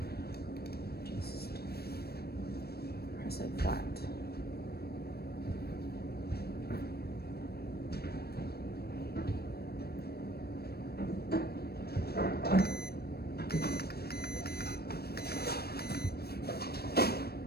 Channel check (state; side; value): late; right; 0.46 ms